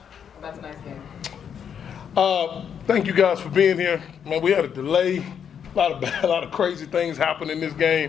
about tonight's game. Thank you guys for being here. Man, we had a delay. A lot of crazy things happened in this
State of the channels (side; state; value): right; quieter; 7.9 dB